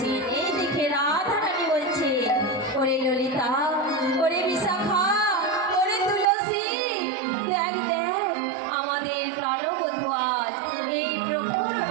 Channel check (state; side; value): drops out; left; at 6.2 s